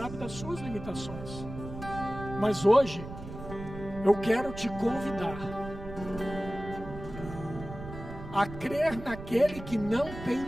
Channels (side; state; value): right; noise; rumble, 11 dB below the sound